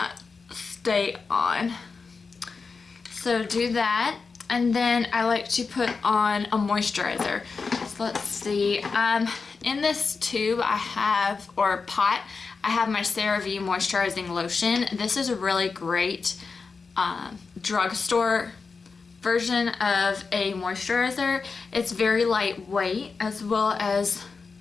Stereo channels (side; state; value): right; quieter; 4.7 dB